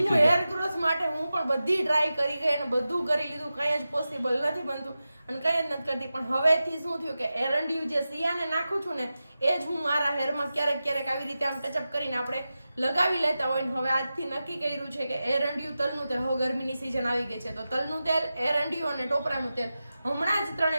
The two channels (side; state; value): both; inverted; correlation -0.93